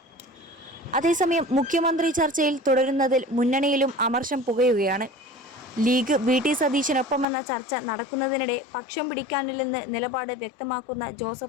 അതേസമയം മുഖ്യമന്ത്രി ചർച്ചയിൽ തുടരുന്നതിൽ മുന്നണിയിലും അമർഷം പുകയുകയാണ്. ലീഗ് വി.ടി. സതീശനൊപ്പമെന്ന ചർച്ച നടക്കുന്നതിനിടെ പക്ഷം പിടിക്കാനില്ലെന്ന് നിലപാട് വ്യക്തമാക്കുന്ന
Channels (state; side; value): drops out; right; at 7.2 s